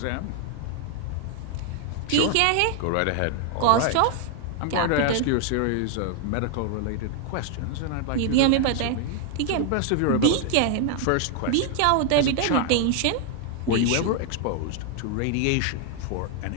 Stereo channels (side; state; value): both; different; correlation 0.00